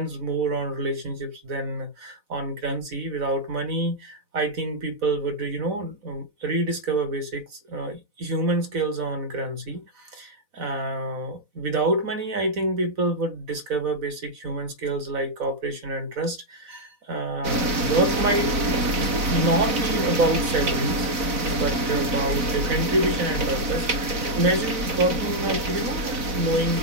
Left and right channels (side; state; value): left; late; 4.0 ms